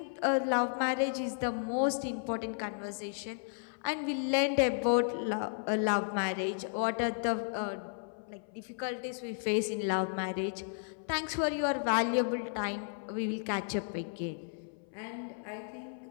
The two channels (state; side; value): silent; right; 55 dB below the other